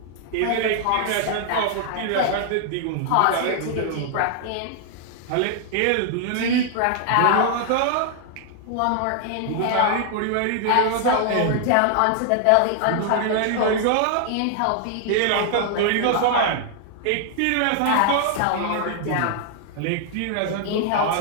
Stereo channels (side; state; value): both; different; correlation 0.00